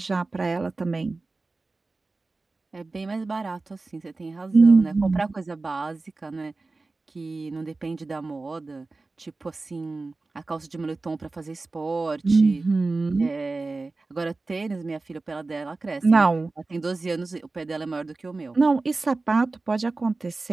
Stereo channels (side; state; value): left; quieter; 3.5 dB